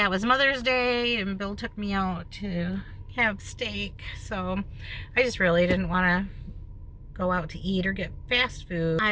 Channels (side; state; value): both; identical; correlation 1.00